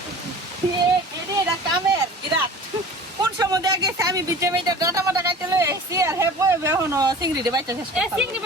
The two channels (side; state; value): both; normal; correlation 0.41